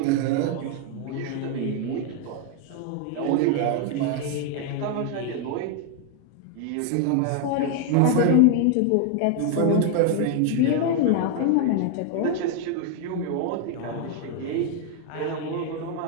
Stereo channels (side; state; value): both; different; correlation 0.00